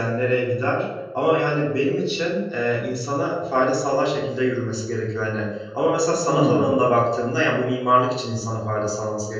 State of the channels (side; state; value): both; identical; correlation 1.00